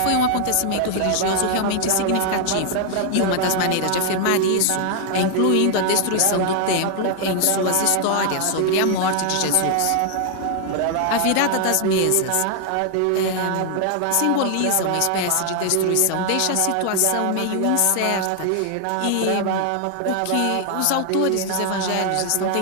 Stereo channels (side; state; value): both; different; correlation 0.00